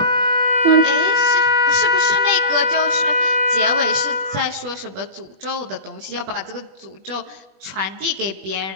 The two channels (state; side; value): late; left; 21 ms